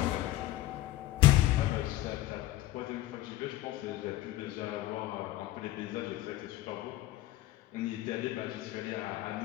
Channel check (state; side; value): quieter; right; 15.5 dB